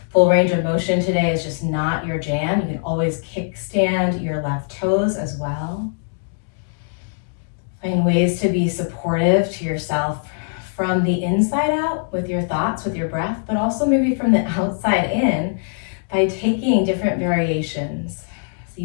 full range of motion today is just not your jam. You can always kickstand your left toes as well. Find ways to be supportive to yourself from the inside out with your thoughts, with your breath, but also maybe from the outside in by taking different variations so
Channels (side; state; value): right; silent; digital silence